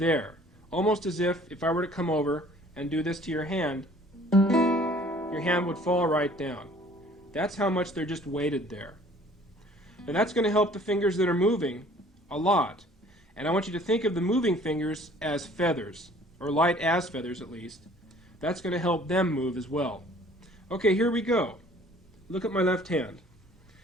almost as if I were to come over and do this to your hand would fall right down. That's how much they're just weighted there. And that's going to help the fingers that are moving a lot. And I want you to think of the moving fingers as feathers, or light as feathers at least. That's going to help them move as well. Okay, here we go. Look at my left hand.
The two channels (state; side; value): normal; both; correlation 0.54